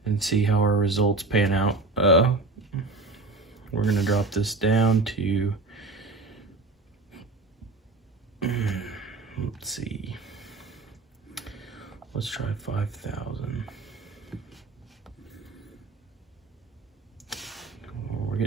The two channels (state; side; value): quieter; left; 3.5 dB